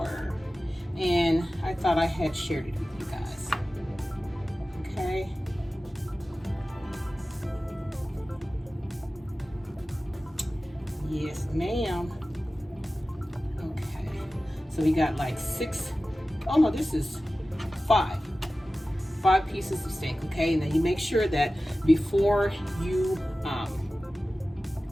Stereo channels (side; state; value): both; normal; correlation 0.95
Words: And I thought I had shared it with you guys. Okay. Yes, ma'am. Okay. So we got like 6, oh no, this is 5 pieces of steak, okay? And then you make sure that before you